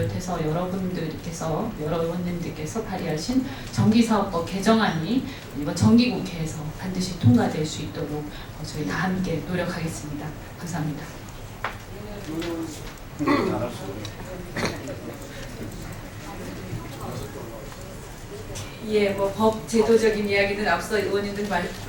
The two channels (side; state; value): both; identical; correlation 1.00